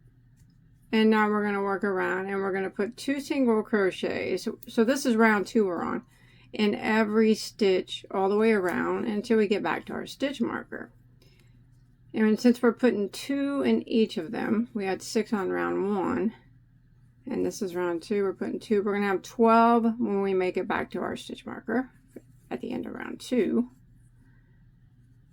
And now we're going to work around and we're going to put 2 single crochets. So this is round 2 we're on, in every stitch all the way around until we get back to our stitch marker. And since we're putting 2 in each of them, we had 6 on round 1. And this is round 2, we're putting 2. We're going to have 12 when we make it back to our stitch marker at the end of round 2.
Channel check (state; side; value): identical; both; correlation 1.00